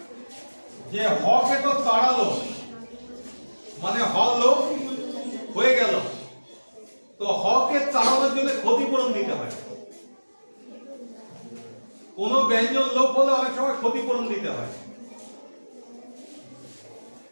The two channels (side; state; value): both; inverted; correlation -1.00